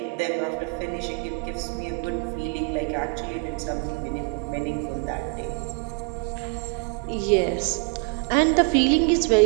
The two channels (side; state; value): left; quieter; 35.4 dB